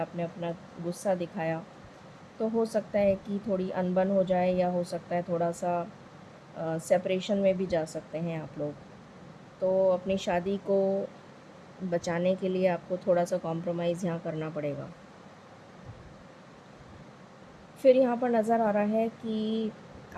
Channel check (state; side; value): identical; both; correlation 1.00